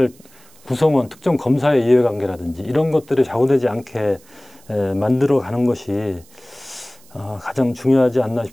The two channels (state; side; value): noise; right; hiss, 27 dB below the sound